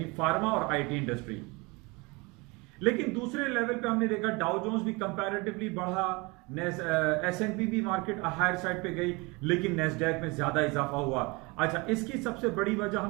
فارما اور آئی ٹی انڈسٹری. لیکن دوسرے لیول پہ ہم نے دیکھا ڈاؤ جونز بھی کمپیریٹیولی بڑھا, S&P بھی مارکیٹ ہائر سائڈ پہ گئی, لیکن نیسڈیک میں زیادہ اضافہ ہوا. اچھا, اس کی سب سے بڑی وجہ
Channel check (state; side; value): quieter; left; 26.3 dB